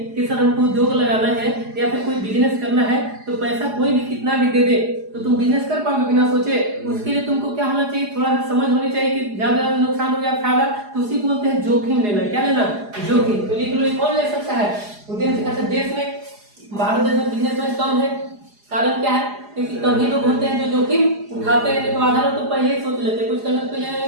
कि सर हमको उद्योग लगाना है या फिर कोई बिजनेस करना है, तो पैसा कोई भी कितना भी दे दे तो तुम बिजनेस कर पाओगे बिना सोचे? उसके लिए तुमको क्या होना चाहिए? थोड़ा सा समझ होनी चाहिए कि ज्यादा नुकसान हो गया फायदा, तो उसी को बोलते हैं जोखिम लेना। क्या लेना? जोखिम। तो लिख लो, कौन ले सकता है? उद्यम। अच्छा, देश में, भारत देश में बिजनेसमैन कम है, कारण क्या है? क्योंकि कभी लोग होते हैं जो जोखिम उठाते हैं, तो आधा लोग तो पहले ही सोच लेते हैं कुछ करने से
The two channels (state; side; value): late; left; 4.8 ms